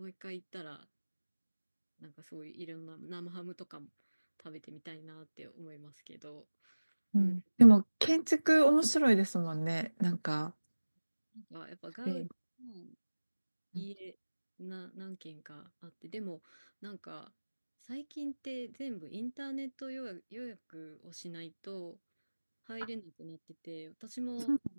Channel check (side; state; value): both; inverted; correlation -1.00